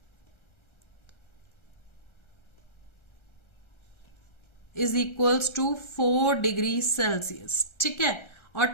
is equals to 4 degree Celsius. ठीक है, और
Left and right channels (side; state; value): right; late; 1.3 ms